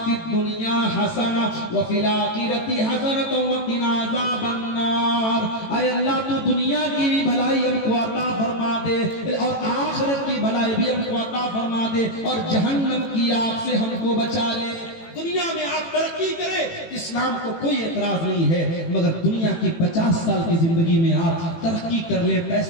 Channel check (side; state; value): right; late; 18 ms